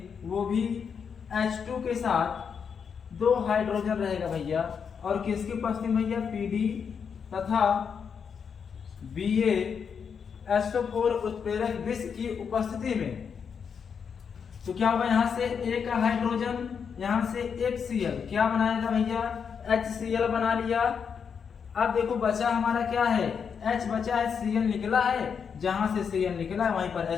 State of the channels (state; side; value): quieter; right; 6.7 dB